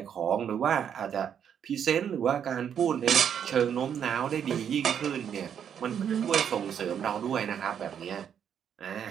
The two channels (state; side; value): quieter; left; 8.4 dB